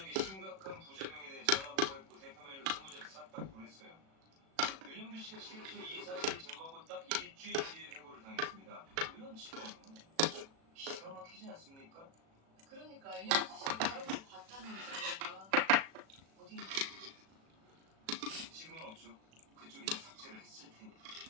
심각한 부작용에 대해 전화 보고했고 대표 메일로 20장 싹 다 보냈어요. 윤영주 씨가 실제 이 사실 제보하고 딱 일주일 뒤에 해고를 당했습니다. 이런 직원은 기가 막히지 않습니까? 그러니까 인영주 씨가 그런 걸 봤다는 증거가 어디 있는지. 지금은 없죠. 그쪽이 다 삭제를 했을 테니.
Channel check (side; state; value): left; late; 36 ms